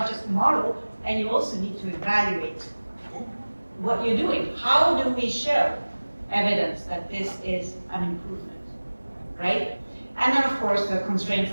just model, and you also need to evaluate what you're doing. How do we show evidence that this is an improvement, right? And then of course the constraints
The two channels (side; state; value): both; inverted; correlation -1.00